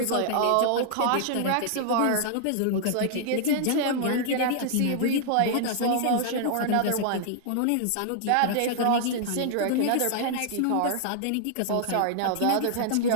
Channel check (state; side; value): different; both; correlation -0.01